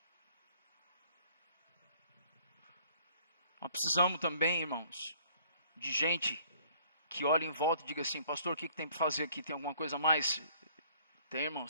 Nós precisamos também, irmãos, de gente que olhe em volta e diga assim: pastor, o que tem para fazer aqui? Tem alguma coisa a mais? Tem,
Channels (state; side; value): inverted; both; correlation -0.59